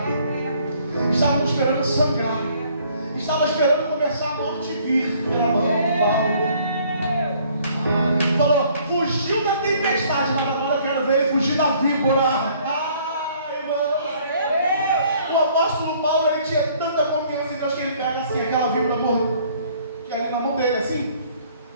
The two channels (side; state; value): both; inverted; correlation -0.60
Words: estavam esperando sangrar, estavam esperando começar a morte vir pela mão de Paulo. Falou, fugiu da tempestade, mas agora eu quero ver ele fugir da víbora. Irmão. O apóstolo Paulo, ele tinha tanta confiança em Deus que ele pega assim, aquela víbora que ali na mão dele, assim.